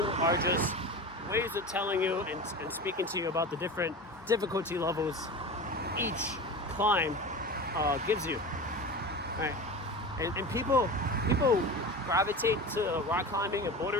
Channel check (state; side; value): normal; both; correlation 0.30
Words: are just ways of telling you and speaking to you about the different difficulty levels each climb gives you, right? And people gravitate to rock climbing and